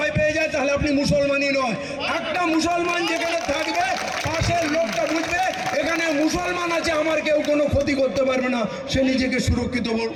পেয়ে যায়, তাহলে আপনি মুসলমানই নয়। একটা মুসলমান যেখানে থাকবে, পাশের লোকটা বুঝবে এখানে মুসলমান আছে, আমার কেউ কোনো ক্ষতি করতে পারবে না, সে নিজেকে সুরক্ষিত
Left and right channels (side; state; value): both; identical; correlation 1.00